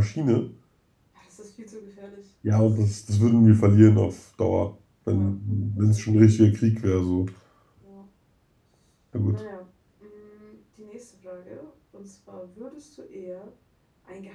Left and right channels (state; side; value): identical; both; correlation 1.00